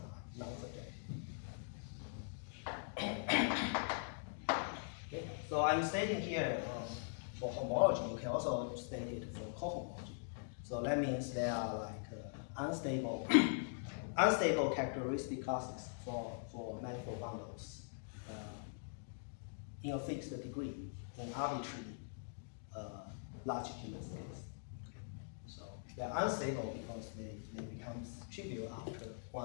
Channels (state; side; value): silent; right; digital silence